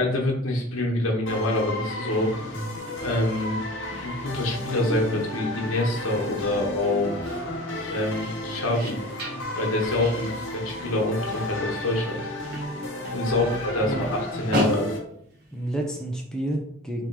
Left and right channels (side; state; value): both; normal; correlation 0.37